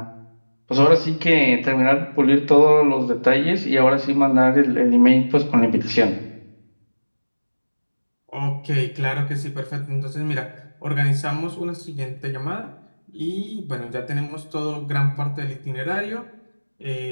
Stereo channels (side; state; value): both; inverted; correlation -1.00